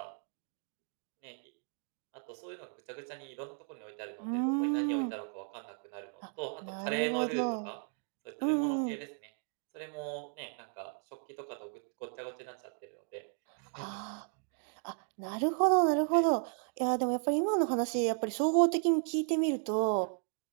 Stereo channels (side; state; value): left; silent; 54 dB below the other